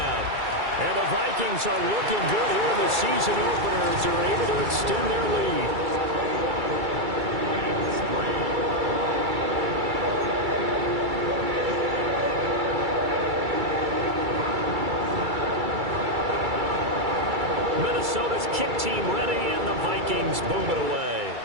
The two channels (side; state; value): left; late; 2.3 ms